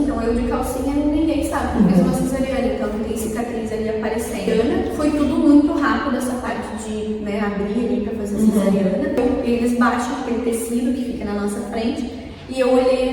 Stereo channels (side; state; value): both; identical; correlation 1.00